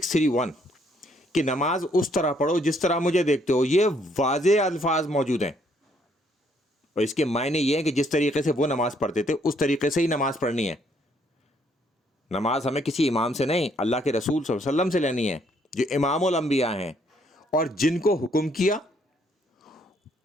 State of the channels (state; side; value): normal; both; correlation 0.68